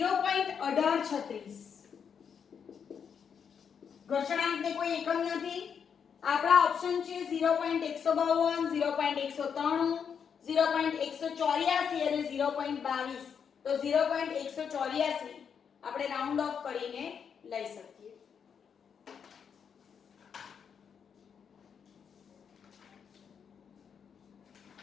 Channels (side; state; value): right; quieter; 7.1 dB